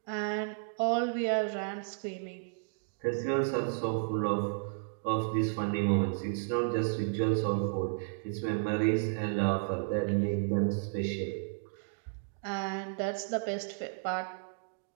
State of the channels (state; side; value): silent; left; digital silence